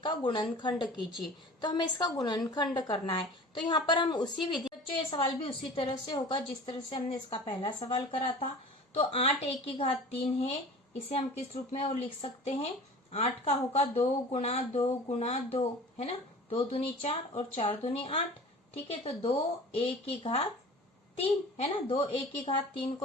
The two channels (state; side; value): normal; both; correlation 0.41